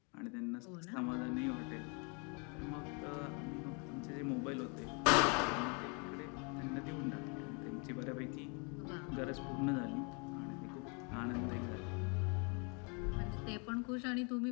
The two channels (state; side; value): quieter; right; 34.4 dB